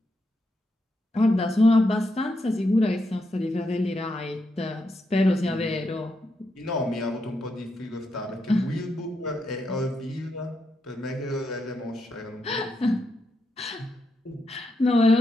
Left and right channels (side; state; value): both; normal; correlation 0.83